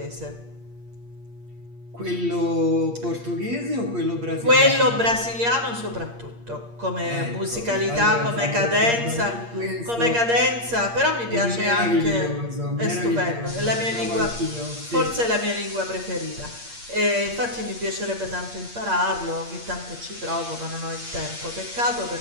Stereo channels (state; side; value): late; left; 8.6 ms